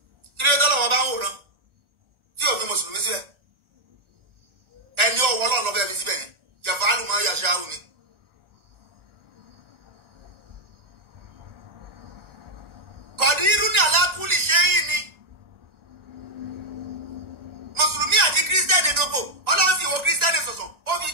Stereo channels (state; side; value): late; left; 1.4 ms